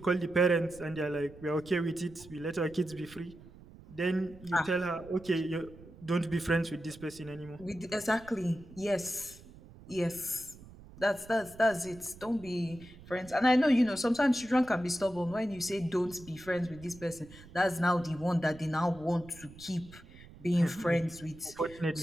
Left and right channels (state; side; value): noise; right; rumble, 19 dB below the sound